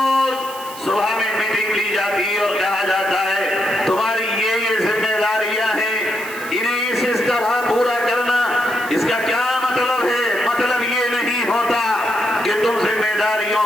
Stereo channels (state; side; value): noise; right; hiss, 15 dB below the sound